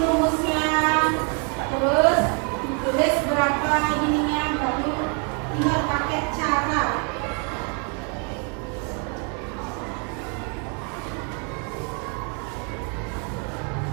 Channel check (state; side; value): quieter; left; 37.5 dB